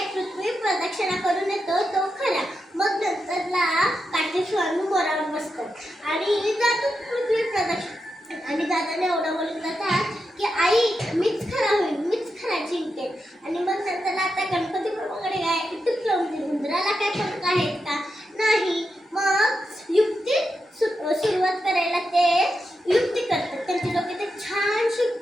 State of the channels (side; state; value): both; normal; correlation 0.87